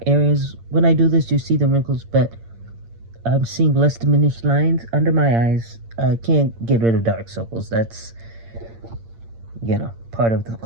areas, when I do this, you see the wrinkles, but I'm seeing less diminished lines under my eyes. I can't get rid of dark circles. That's, part of the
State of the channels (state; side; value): late; left; 8.7 ms